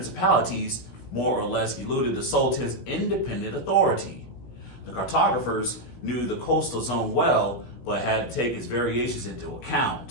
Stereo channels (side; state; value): right; late; 16 ms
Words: more or less eluded the Sultan's independent authority. The cartographers knew the coastal zone well, but had to take its variations into